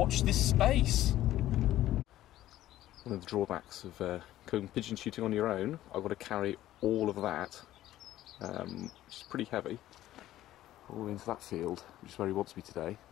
this space. One of the drawbacks of going pigeon shooting on your own, I've got to carry all of that, which is pretty heavy, all into that field, which is where he wants me today.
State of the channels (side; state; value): right; quieter; 14.0 dB